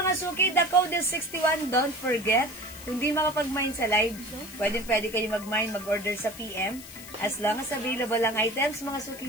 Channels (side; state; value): left; noise; hiss, 15 dB below the sound